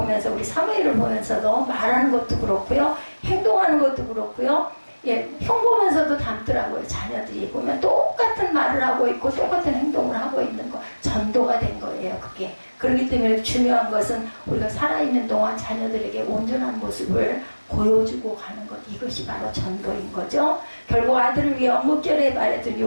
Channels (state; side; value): inverted; both; correlation -1.00